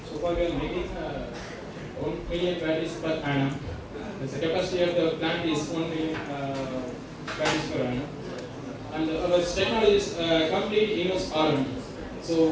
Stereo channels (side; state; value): both; identical; correlation 1.00